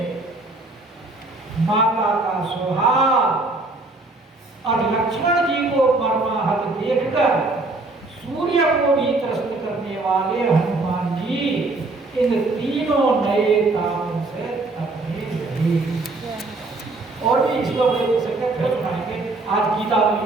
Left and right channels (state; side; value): quieter; left; 3.1 dB